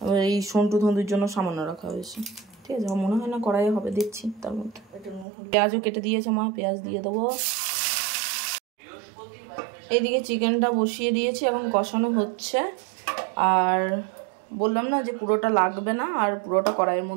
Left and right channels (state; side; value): drops out; left; at 5.2 s